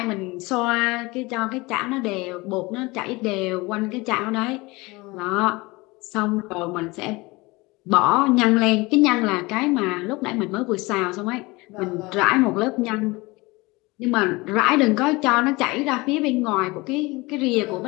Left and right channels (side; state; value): right; quieter; 23.3 dB